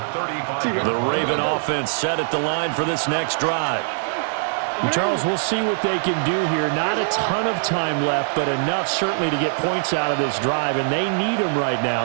35. The Raven offense set at the line for this next drive. And Charles, we'll see what they can do here. Not a ton of time left, but enough certainly to get points out of this drive, and they need them right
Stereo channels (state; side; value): silent; left; digital silence